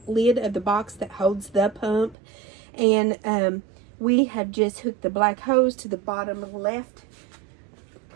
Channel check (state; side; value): drops out; left; at 2.1 s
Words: lid of the box that holds the pump. And we have just hooked the black hose to the bottom left